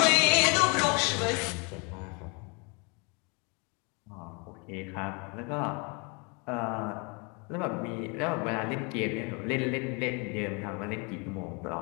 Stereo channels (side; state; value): right; quieter; 31.6 dB